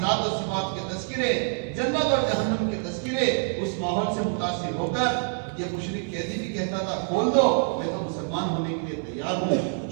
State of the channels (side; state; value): left; silent; 61 dB below the other